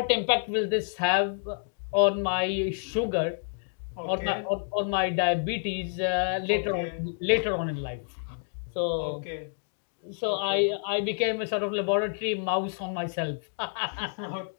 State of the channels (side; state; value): right; silent; digital silence